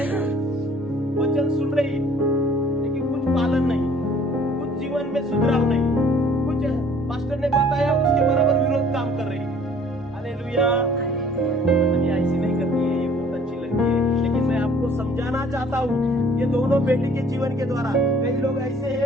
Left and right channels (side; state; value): both; normal; correlation 0.55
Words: वचन सुन रही लेकिन कुछ पालन नहीं, कुछ जीवन में सुधराव नहीं, कुछ पास्टर ने बताया उसके बराबर विरोध काम कर रही है। हालेलुया। मतलब ये ऐसी नहीं करती है, ये बहुत अच्छी लगती है, लेकिन मैं आपको समझाना चाहता हूँ ये दोनों बेटी के जीवन के द्वारा। कई लोग ऐसे